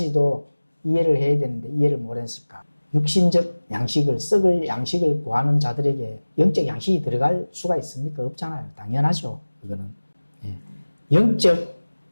이해를 해야 되는데 이해를 못했을까? 육신적 양식을, 썩을 양식을 구하는 자들에게 영적 양식이 들어갈 수가 있습니까? 없잖아요. 당연하죠. 그거는. 영적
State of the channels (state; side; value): inverted; both; correlation -1.00